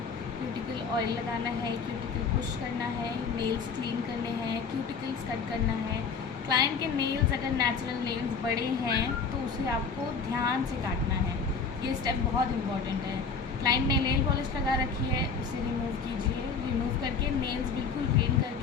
क्यूटिकल ऑयल लगाना है, क्यूटिकल पुश करना है, नेल्स क्लीन करने हैं, क्यूटिकल्स कट करना है। क्लाइंट के नेल्स अगर नेचुरल नेल्स बड़े हैं तो उसे आपको ध्यान से काटना है। ये स्टेप बहुत इंपॉर्टेंट है। क्लाइंट ने नेल पॉलिश लगा रखी है, उसे रिमूव कीजिए। रिमूव करके नेल्स बिल्कुल क्लीन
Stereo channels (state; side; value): quieter; right; 5.4 dB